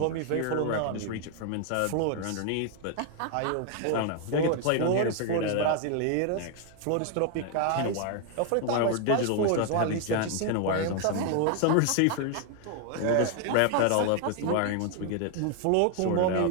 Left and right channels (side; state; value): both; different; correlation 0.00